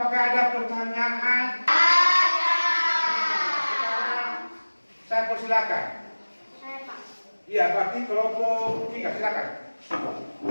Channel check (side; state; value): both; inverted; correlation -1.00